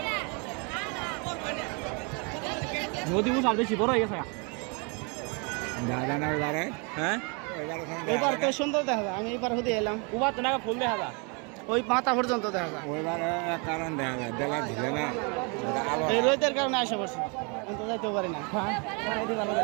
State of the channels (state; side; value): quieter; left; 33.3 dB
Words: নদী মুসাল বেশি বড় হয়ে গেছে হ্যাঁ এবার তো সুন্দর দেখা যায় আমি এবার হতে এলাম উবার তো না ফুল দেখা যায় ওই মাথা পর্যন্ত দেখা যায় কারণ দেখা যায় বেলা ঝিলে না এই রোদের কারণে আসে পড়ছি কিন্তু যাইতেও পারি না